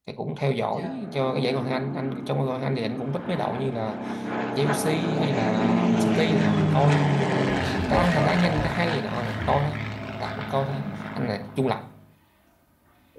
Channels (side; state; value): both; identical; correlation 1.00